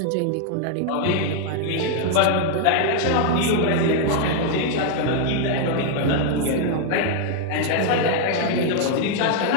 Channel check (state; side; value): different; both; correlation 0.00